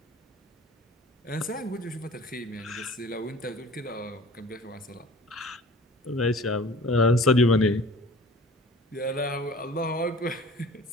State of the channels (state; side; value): normal; both; correlation 0.44